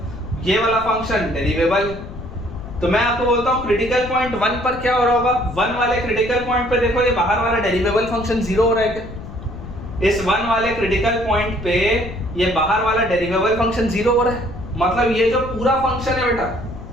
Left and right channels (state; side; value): noise; left; rumble, 12 dB below the sound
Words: ये वाला फंक्शन डेरिवेबल। तो मैं आपको बोलता हूँ क्रिटिकल पॉइंट 1 पर क्या हो रहा होगा? 1 वाले क्रिटिकल पॉइंट पे देखो, ये बाहर वाला डेरिवेबल फंक्शन जीरो हो रहा है क्या? इस 1 वाले क्रिटिकल पॉइंट पे ये बाहर वाला डेरिवेबल फंक्शन जीरो हो रहा है, मतलब ये जो पूरा फंक्शन है बेटा,